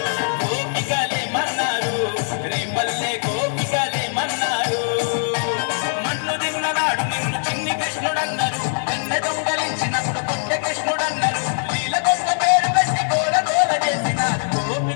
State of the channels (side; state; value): right; silent; digital silence